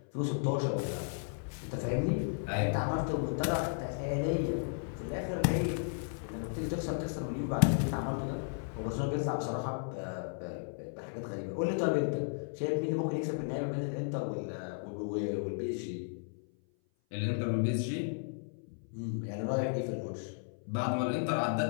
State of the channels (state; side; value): silent; right; 55 dB below the other